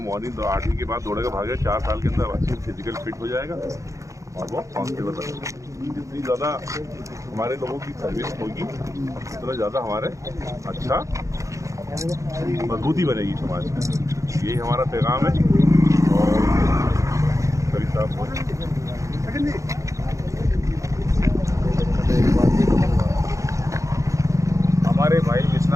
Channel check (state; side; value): late; left; 0.15 ms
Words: मॉर्निंग 8वीं के बाद दौड़ेगा, भागेगा, 4 साल के अंदर अच्छी फिजिकल फिट हो जाएगा और वो कांस्टेबल बनेगा। जितनी ज़्यादा हमारे लोगों की सर्विस होगी, उतना ज़्यादा हमारे अच्छा मजबूती बनेगी समाज में। यही हमारा पैगाम है। और करीब साहब हमारे भाई